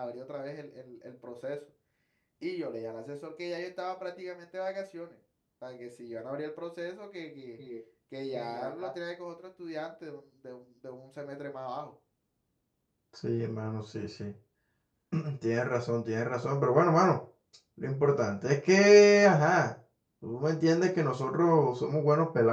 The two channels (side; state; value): both; identical; correlation 1.00